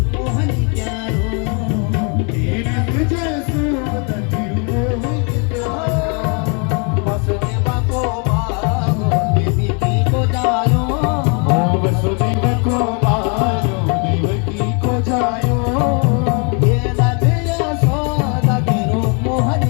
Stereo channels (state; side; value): quieter; right; 36.4 dB